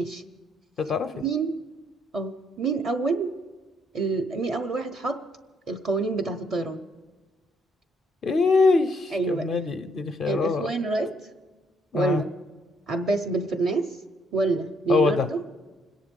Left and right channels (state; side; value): normal; both; correlation 0.70